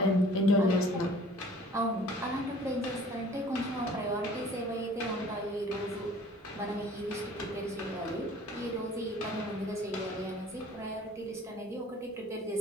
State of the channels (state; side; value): normal; both; correlation 0.50